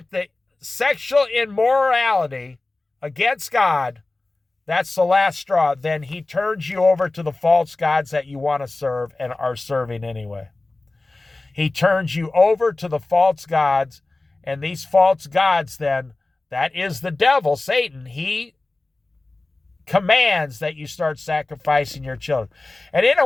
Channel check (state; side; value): quieter; right; 3.1 dB